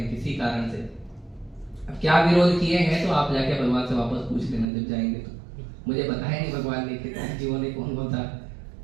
किसी कारण से, अब क्या विरोध किए हैं तो आप जाके भगवान से वापस पूछ लेना जब जाएंगे। तो मुझे बताया नहीं भगवान ने कितने जीवों ने कौन कौन सा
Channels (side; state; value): left; drops out; at 4.7 s